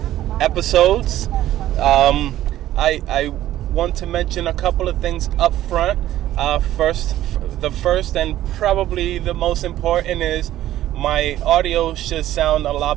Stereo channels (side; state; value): left; quieter; 13.5 dB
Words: episodes. I want to mention a couple of things up front. The first and probably the most important is my audio should sound a